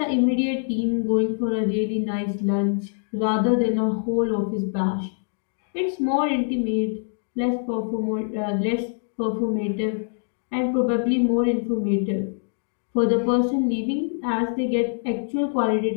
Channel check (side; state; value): right; silent; digital silence